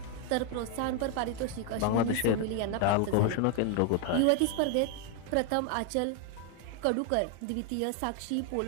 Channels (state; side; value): different; both; correlation 0.01